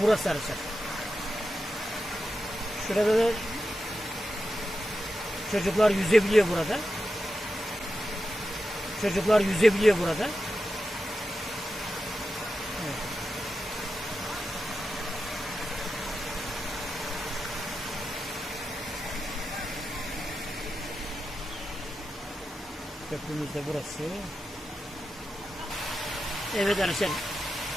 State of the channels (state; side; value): normal; both; correlation 0.90